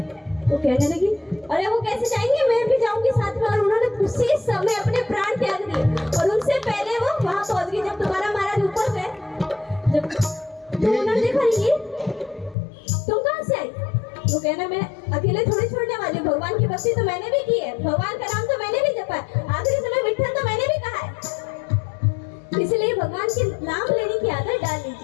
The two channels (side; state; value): right; drops out; at 12.6 s